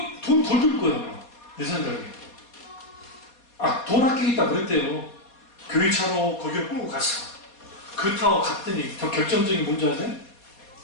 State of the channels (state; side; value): late; right; 4.2 ms